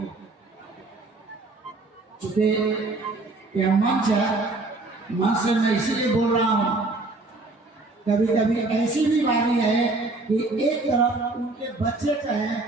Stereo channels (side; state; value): left; quieter; 3.2 dB